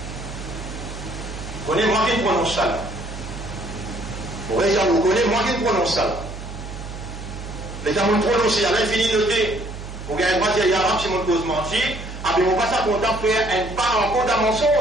Vous connaissez moi qui prononce ça là. Vous connaissez moi qui prononce ça là. Les gens m'ont prononcé à l'infini noté. Vous gagnez pas dire arabe si mon cause menti. Ah bien on va ça content faire un pas encore dans mon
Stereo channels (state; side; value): noise; right; hum, 10 dB below the sound